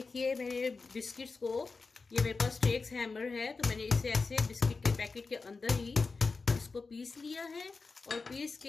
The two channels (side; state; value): right; quieter; 4.3 dB